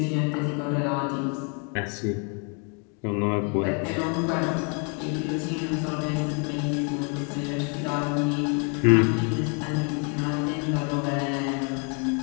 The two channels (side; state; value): right; quieter; 37.2 dB